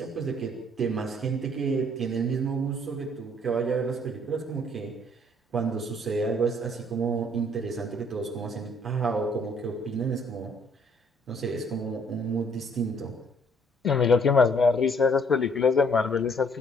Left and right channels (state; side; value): normal; both; correlation 0.63